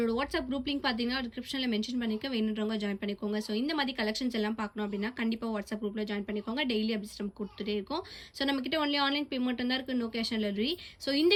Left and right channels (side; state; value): both; identical; correlation 1.00